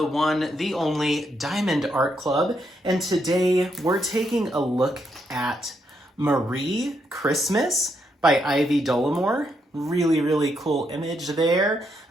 one, the only Diamond Art Club, and today we're taking a look at Marie Christmas by Ivy Dolamore. Really cool image there.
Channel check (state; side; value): normal; both; correlation 0.78